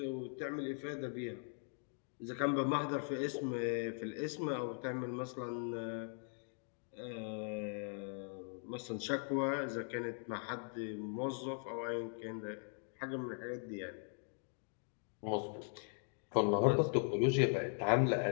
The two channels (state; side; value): silent; right; 51 dB below the other